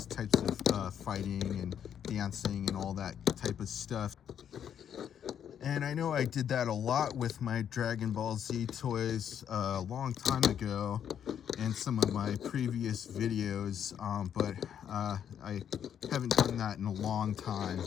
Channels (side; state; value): right; quieter; 9.0 dB